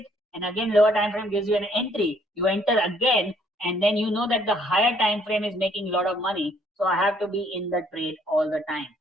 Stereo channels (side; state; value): both; normal; correlation 0.64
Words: and again lower time frame gives you an entry, you enter again, and then you know that the higher time frame is making a lot of money, so I have to be in the trade all the time